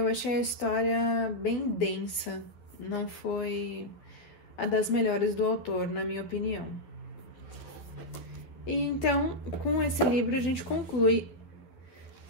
achei a história bem densa, não foi a das melhores do autor, na minha opinião. E então, com esse livro, a gente conclui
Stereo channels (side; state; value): right; late; 11 ms